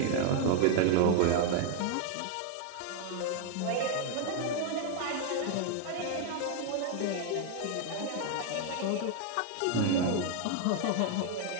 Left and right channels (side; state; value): both; different; correlation 0.00